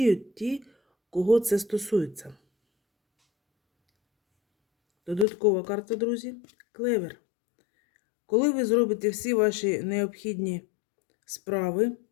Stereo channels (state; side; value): drops out; right; at 5.2 s